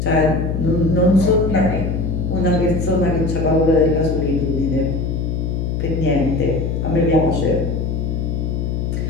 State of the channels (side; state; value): left; noise; hum, 1 dB below the sound